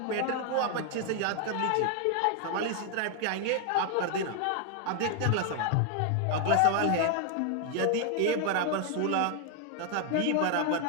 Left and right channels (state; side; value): different; both; correlation 0.00